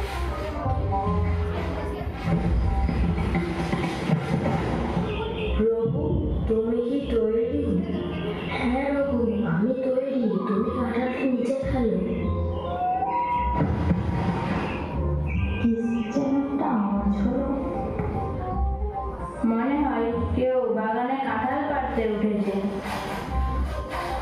তুমি কি তৈরি? হ্যাঁ রঘু, আমি তৈরি। তুমি কাঁঠালটা নিচে ফেলো। একটা আওয়াজ হলো, মনে হয় কেউ বাগানে কাঁঠাল পাড়তে উঠেছে।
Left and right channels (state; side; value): identical; both; correlation 1.00